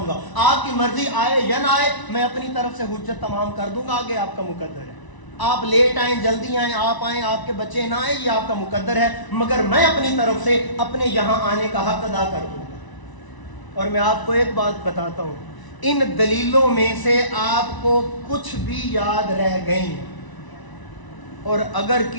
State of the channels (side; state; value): right; late; 1.0 ms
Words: گا، آپ کی مرضی آئے یا نہ آئے، میں اپنی طرف سے حجت تمام کر دوں گا، آگے آپ کا مقدر ہے. آپ لیٹ آئیں جلدی آئیں، آپ آئیں آپ کے بچے نہ آئیں، یہ آپ کا مقدر ہے، مگر میں اپنی طرف سے اپنے یہاں آنے کا حق ادا کر دوں گا. اور میں آپ کو ایک بات بتاتا ہوں، ان دلیلوں میں سے آپ کو کچھ بھی یاد رہ گئیں، اور اگر